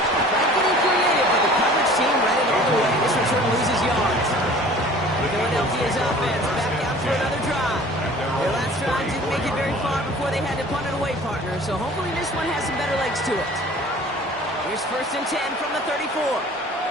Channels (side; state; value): both; normal; correlation 0.47